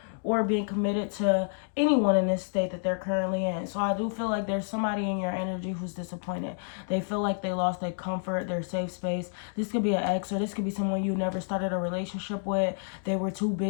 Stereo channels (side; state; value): right; silent; digital silence